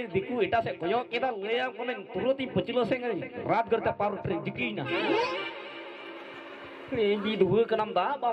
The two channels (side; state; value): both; identical; correlation 1.00